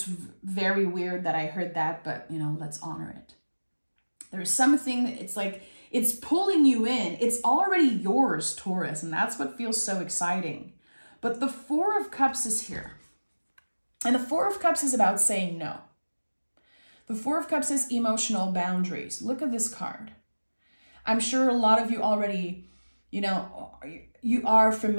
very weird that I heard that, but you know, let's honor it. There's something, it's like, it's pulling you in. It's already yours, Taurus, and that's what feels so exciting. But the Four of Cups is here. And the Four of Cups is about saying no. The Four of Cups is emotional boundaries. Look at this card. I'm sure a lot of you already, you know, you are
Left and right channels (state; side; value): inverted; both; correlation -1.00